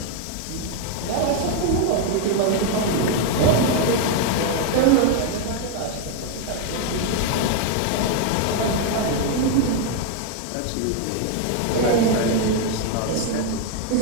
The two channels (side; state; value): both; different; correlation 0.01